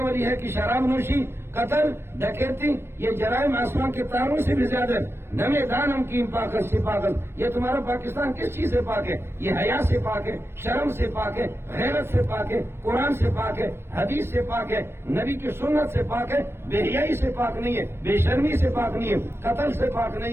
والی ہے کہ شراب نوشی، قتل، ڈکیتی، یہ جرائم آسمان کے تاروں سے بھی زیادہ۔ نمے دانم کی پاکت سے پاکت، یہ تمہارا پاکستان کس چیز سے پاک ہے؟ یہ حیا سے پاک ہے، شرم سے پاک ہے، غیرت سے پاک ہے، قرآن سے پاک ہے، حدیث سے پاک ہے، نبی کی سنت سے پاک ہے، بے حیائی سے پاک نہیں ہے، بے شرمی سے پاک نہیں ہے، قتل سے پاک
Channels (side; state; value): left; late; 0.12 ms